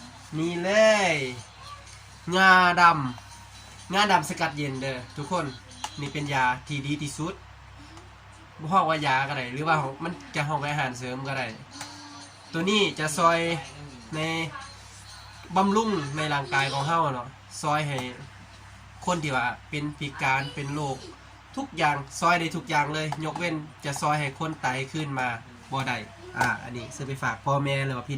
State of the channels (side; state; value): both; identical; correlation 1.00